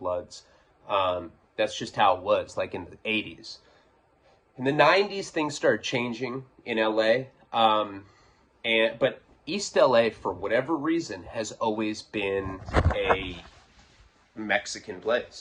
That's just how it was, like in the 80s. In the 90s, things started changing in LA. But East LA, for whatever reason, has always been a Mexican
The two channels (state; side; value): identical; both; correlation 1.00